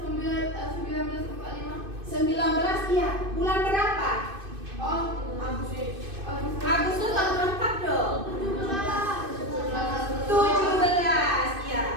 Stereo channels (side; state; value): left; late; 2.5 ms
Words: 1945. Iya. Bulan berapa? Agustus tahun berapa dong? 17,